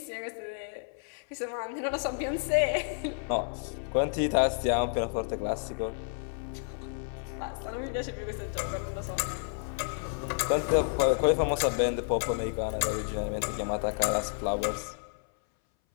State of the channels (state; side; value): silent; right; 57 dB below the other